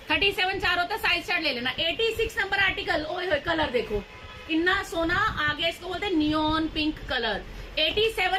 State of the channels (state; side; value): identical; both; correlation 1.00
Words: 37 4 होता है, साइज चार्ट ले लेना। 86 नंबर आर्टिकल, ओए होए कलर देखो इतना सोना आ गया, इसको बोलते हैं neon pink colour.